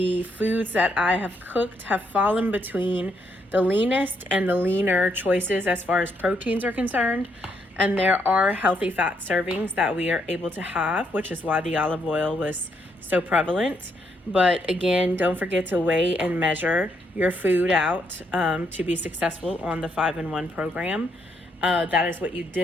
foods that I have cooked have fallen between the leanest and the leaner choices as far as proteins are concerned, and there are healthy fat servings that we are able to have, which is why the olive oil was so prevalent. But again, don't forget to weigh and measure your food out to be successful on the 5-in-1 program. That is what you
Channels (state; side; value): normal; both; correlation 0.75